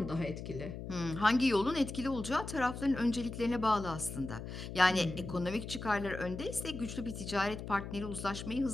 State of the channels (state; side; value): noise; left; hum, 8 dB below the sound